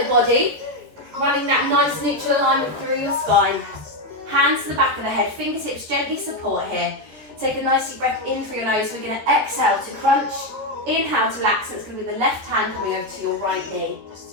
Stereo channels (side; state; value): left; late; 14 ms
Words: body, running that nice neutral alignment through your spine. Hands to the back of the head, fingertips gently support here. Take a nice deep breath in through your nose. We're going to exhale to crunch, inhale to relax. So it's going to be the left hand coming over to your right knee.